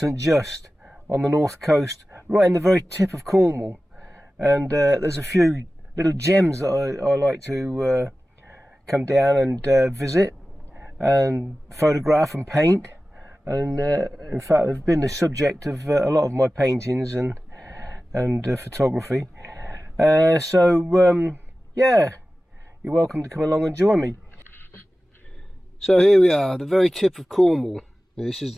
Just on the north coast, right in the very tip of Cornwall. And there's a few little gems that I like to come down and visit and photograph and paint. And in fact, they've been the subject of a lot of my paintings and photography. Yeah, you're welcome to come along and join me. So here we are, the very tip of Cornwall. This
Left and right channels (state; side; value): normal; both; correlation 0.95